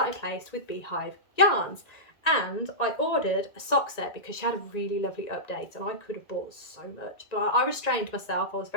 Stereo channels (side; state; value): right; late; 1.8 ms